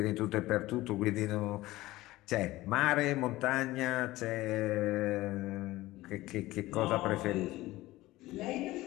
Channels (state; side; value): quieter; right; 17.9 dB